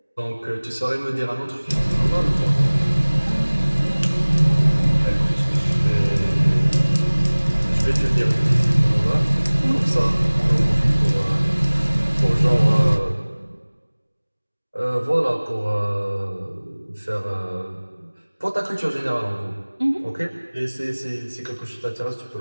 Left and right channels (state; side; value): inverted; both; correlation -1.00